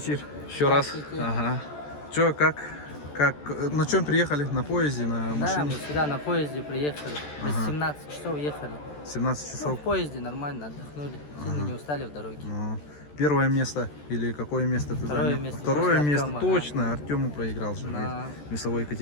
Еще раз. Ага. Че, как, на чем приехали? На поезде, на Да, машине? мы сюда на поезде приехали. Без 17 часов ехали. 17 Ну, часов. в поезде нормально отдохнули. Сильно не устали в дороге. Ну, первое место или какое место ты Второе занял? место. Второе После место, Артема, точно. Артему проиграл же Да. в весовой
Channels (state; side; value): late; right; 14 ms